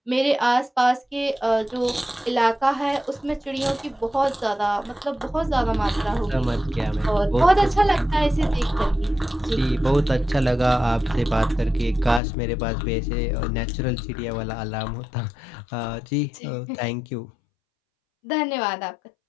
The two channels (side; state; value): right; drops out; at 12.2 s